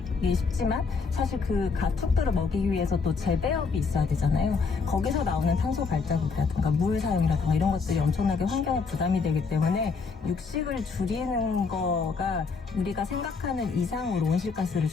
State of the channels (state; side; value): quieter; right; 4.9 dB